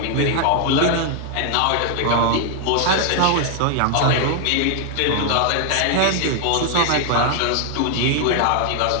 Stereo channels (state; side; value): different; both; correlation 0.00